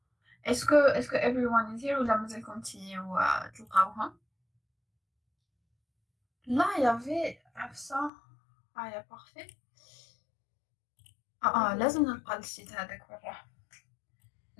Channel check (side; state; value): right; drops out; at 8.1 s